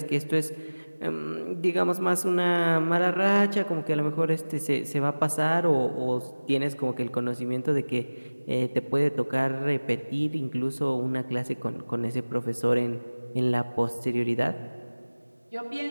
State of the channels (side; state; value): both; inverted; correlation -1.00